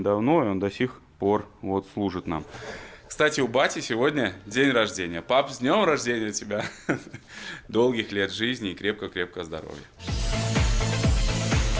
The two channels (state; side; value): identical; both; correlation 1.00